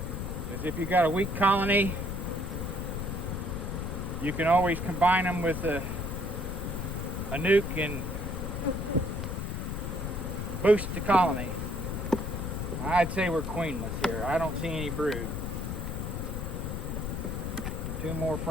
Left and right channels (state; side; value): noise; left; rumble, 3 dB below the sound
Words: is if you've got a weak colony, you can always combine them with a nuke and boost the colony. I'd say we're queenless here. I don't see any brood. Two more